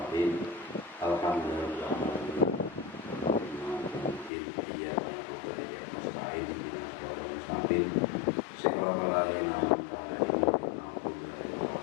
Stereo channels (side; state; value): right; drops out; at 4.3 s